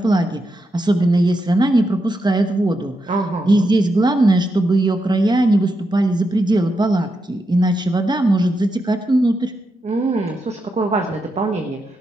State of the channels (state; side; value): normal; both; correlation 0.84